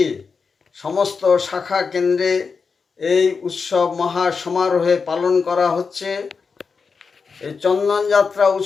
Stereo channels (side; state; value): right; quieter; 5.2 dB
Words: সমস্ত শাখা কেন্দ্রে এই উৎসব মহা সমারোহে পালন করা হচ্ছে। এই চন্দনযাত্রা